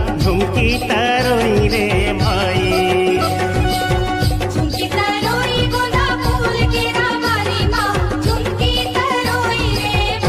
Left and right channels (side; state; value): both; identical; correlation 1.00